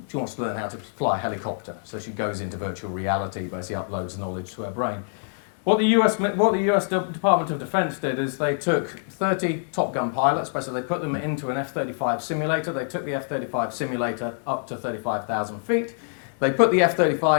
wants to learn how to fly a helicopter, so she goes into virtual reality, basically uploads knowledge to her brain. What the US Department of Defense did is they took 30 Top Gun pilots, basically they put them into an F-35 simulator. They took the F-35 simulator up to 35,000 feet. They put the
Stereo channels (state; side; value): silent; right; 62 dB below the other